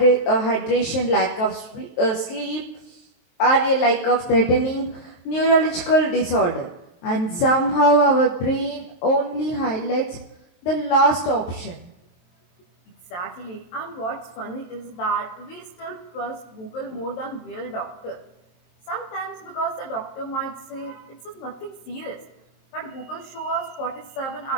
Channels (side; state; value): right; late; 23 ms